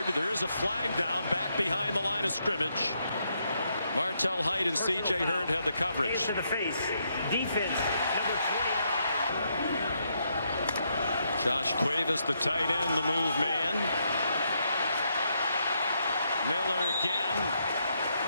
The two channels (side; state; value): both; inverted; correlation -0.77